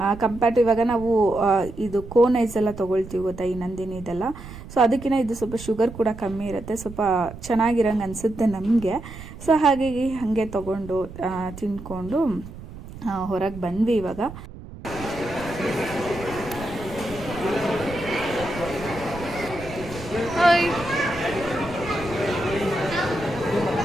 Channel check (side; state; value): right; noise; rumble, 14 dB below the sound